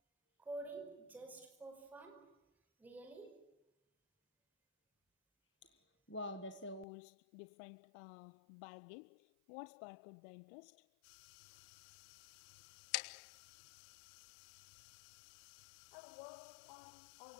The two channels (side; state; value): right; drops out; at 6.9 s